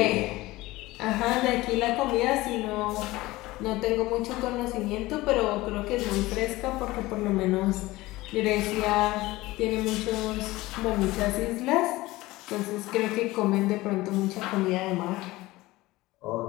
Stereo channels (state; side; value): quieter; right; 19.1 dB